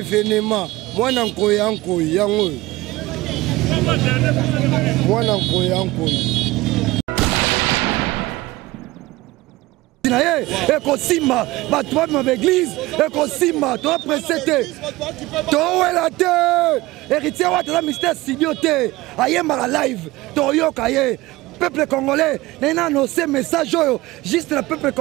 venema mwana nkoya nkoyi yango mwana nkoya nkoyi naye ekosimba batu babima baeglise ekosimba toa presete towela te héritier Watana mystère studio te ayembaka live toyoka ye peuple congolais n'a annoncé message juste le peuple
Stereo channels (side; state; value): left; quieter; 19.5 dB